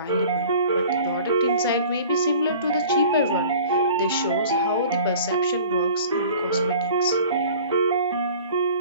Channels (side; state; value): both; inverted; correlation -0.46